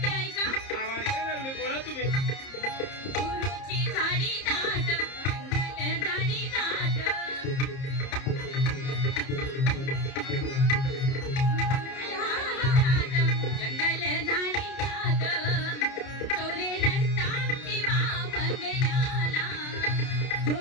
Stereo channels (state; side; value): late; right; 30 ms